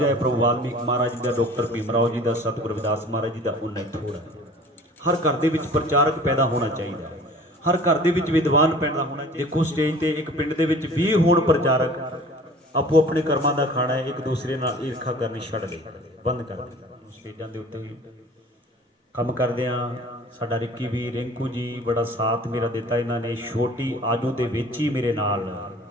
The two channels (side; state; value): both; normal; correlation 0.46